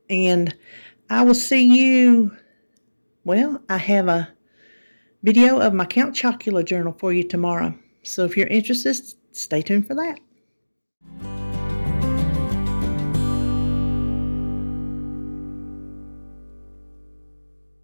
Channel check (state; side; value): inverted; both; correlation -1.00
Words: And I will see you, well, I have a video of my Count Chocula journal for you tomorrow. So if you're interested, stay tuned for that.